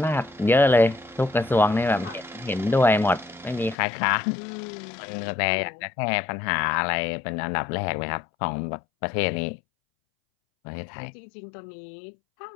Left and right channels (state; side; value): drops out; right; at 3.8 s